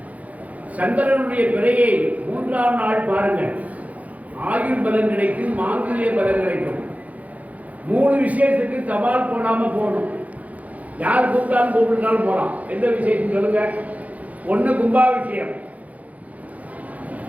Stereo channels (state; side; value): late; left; 0.071 ms